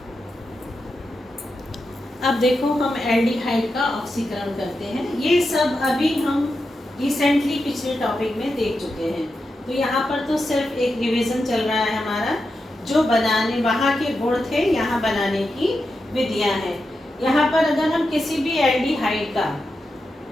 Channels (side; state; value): both; normal; correlation 0.88